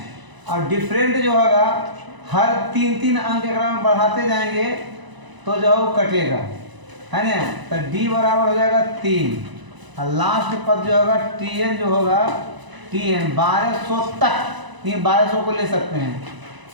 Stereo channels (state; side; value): late; left; 1.0 ms